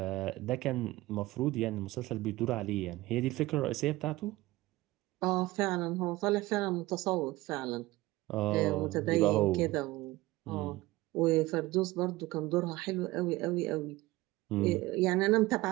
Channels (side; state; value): left; quieter; 19.0 dB